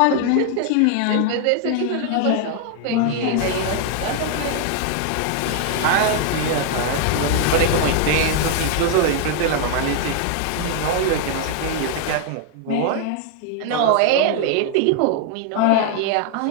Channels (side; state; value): both; different; correlation 0.00